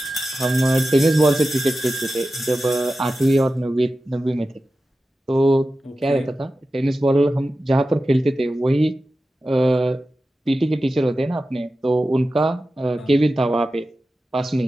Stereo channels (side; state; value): both; normal; correlation 0.93